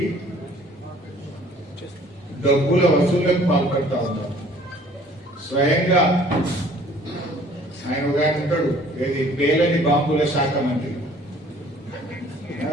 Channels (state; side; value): normal; both; correlation 0.54